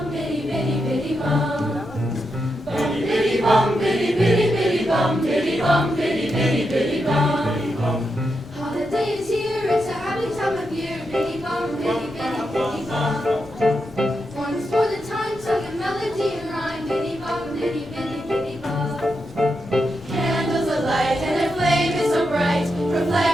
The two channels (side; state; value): both; normal; correlation 0.85